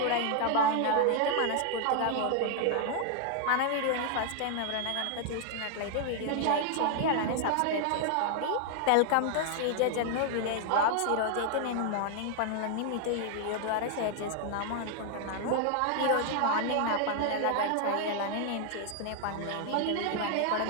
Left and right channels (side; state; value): both; different; correlation 0.00